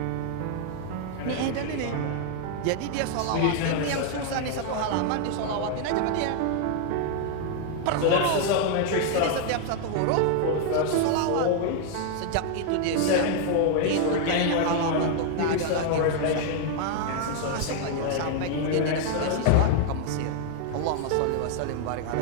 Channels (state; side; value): different; both; correlation 0.00